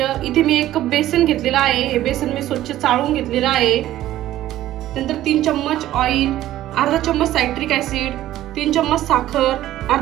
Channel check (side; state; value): left; quieter; 13.9 dB